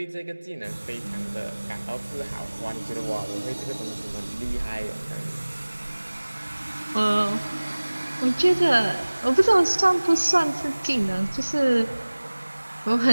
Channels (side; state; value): both; inverted; correlation -1.00